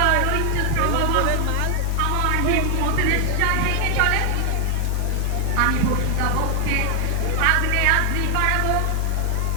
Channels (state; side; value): different; both; correlation 0.00